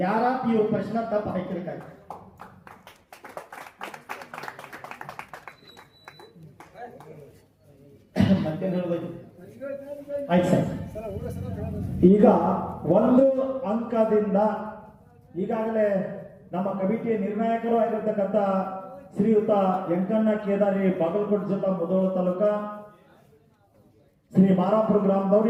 ಯಾರ ಇವ್ರ ಪ್ರಶ್ನೆ ತಪ್ಪು ಹಾಕಿರ್ಕಾಗ. ಮತ್ತೆ ಹೇಳ್ಬೇಕು ಆಯ್ತು ಸರ್. ಈಗ 1 ಅಂಕದಿಂದ ಈಗಾಗಲೇ ನಮ್ಮ ಕಮಿಟಿಯ ನಿರ್ಣಾಯಕರು ಆಗಿರ್ತಕ್ಕಂಥ ಶ್ರೀಯುತ ಯಂಕಣ್ಣ ಕೇದಾರಿ ಬಾಗಲಕೋಟೆ ಜಿಲ್ಲಾ ಮುಧೋಳ ತಾಲೂಕ ಶ್ರೀ ಮಾರಾಪುರ ಗ್ರಾಮದವರು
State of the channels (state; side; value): identical; both; correlation 1.00